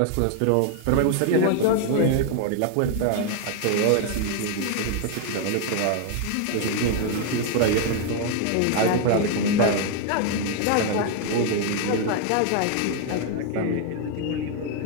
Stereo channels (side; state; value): both; different; correlation 0.00